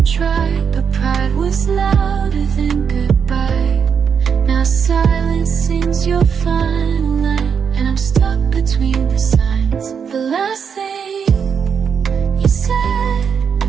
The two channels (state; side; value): quieter; left; 6.9 dB